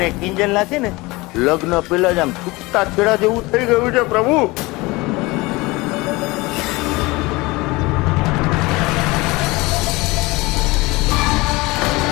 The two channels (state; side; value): quieter; right; 22.6 dB